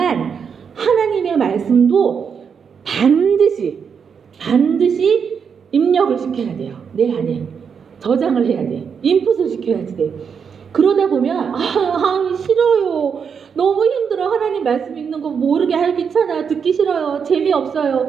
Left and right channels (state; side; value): quieter; left; 6.6 dB